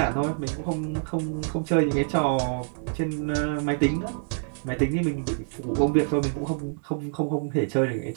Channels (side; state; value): left; silent; digital silence